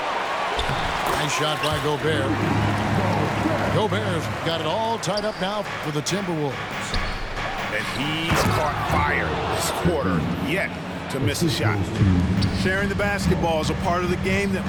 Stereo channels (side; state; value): both; identical; correlation 1.00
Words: Nice shot by Gobert. Gobert's got it all tied up now for the Timberwolves. And he's caught fire this quarter, yet to miss a shot. Sharing the basketball is a part of the game that